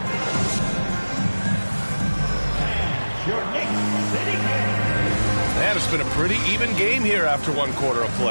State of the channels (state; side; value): inverted; both; correlation -1.00